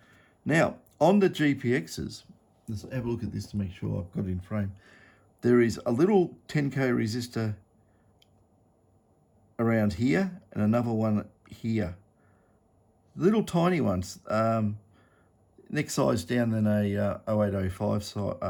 Now, on the GPXs, let's have a look at this to make sure I've got it in frame. There is a little 10K resistor around here and another one here. Little tiny ones, next size down than a 0805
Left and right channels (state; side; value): identical; both; correlation 1.00